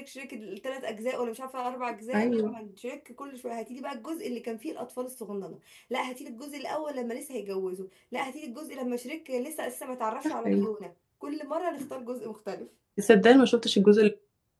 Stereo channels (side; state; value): both; identical; correlation 1.00